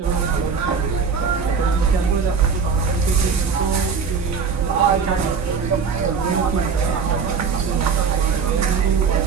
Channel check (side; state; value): left; quieter; 5.8 dB